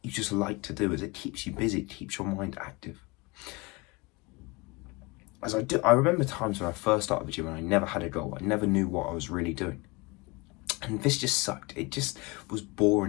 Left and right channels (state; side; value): quieter; right; 25.4 dB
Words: you just like to do, as it keeps you busy. It keeps your mind active. I remember times when I first started the gym and I never had a goal. I never knew what I was really doing. And this just sucked. It just was